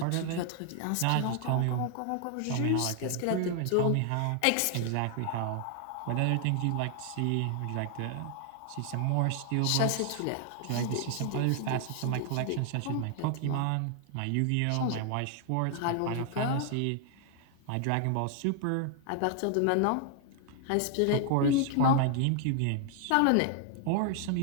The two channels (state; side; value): different; both; correlation 0.00